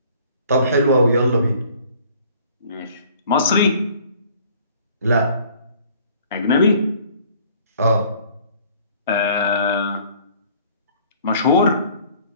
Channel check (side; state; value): both; inverted; correlation -0.54